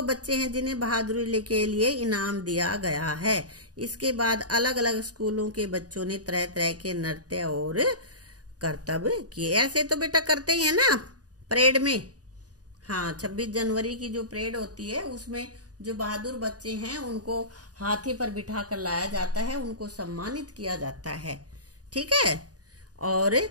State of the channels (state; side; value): late; left; 0.68 ms